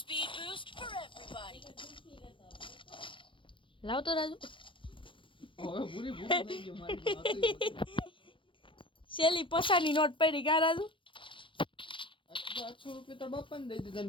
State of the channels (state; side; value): late; right; 0.25 ms